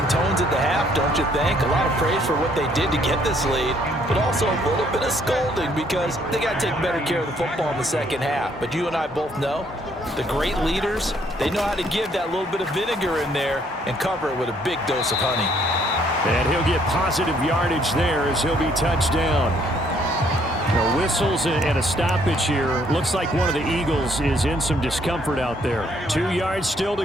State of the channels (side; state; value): both; normal; correlation 0.66